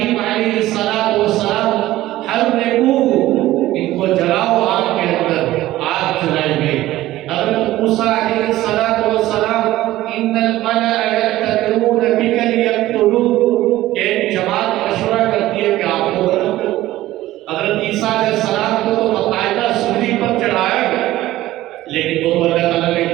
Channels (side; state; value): left; quieter; 15.7 dB